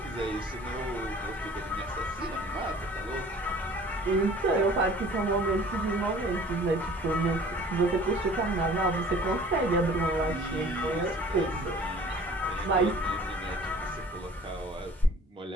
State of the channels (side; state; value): both; normal; correlation 0.49